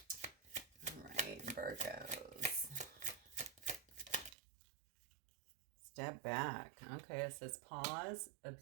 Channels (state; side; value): drops out; left; at 4.4 s